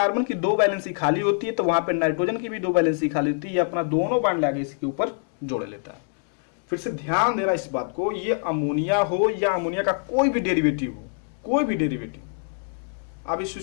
की 2 वैलेंसी खाली होती है, तो वहां पे नाइट्रोजन की भी 2 वैलेंसी खाली होती है, ये अपना दोनों बांड लाके इसके ऊपर जोड़ लेता है। फिर से ध्यान देना इस बात को, ये अमोनिया हो या अमोनिया का कोई भी डेरिवेटिव हो, कोई भी डेरिवेटिव, अब इस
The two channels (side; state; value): right; silent; digital silence